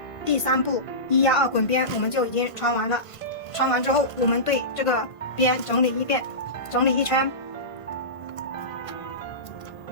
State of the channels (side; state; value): right; late; 1.5 ms